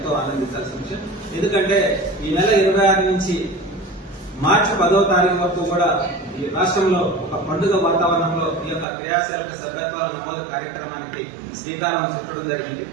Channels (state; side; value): drops out; left; at 8.8 s